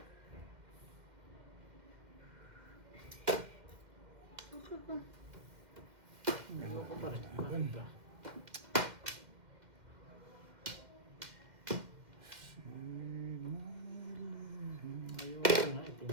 Ayoko pa rin. Bakit ba? Ayoko nga.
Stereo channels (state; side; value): late; left; 2.1 ms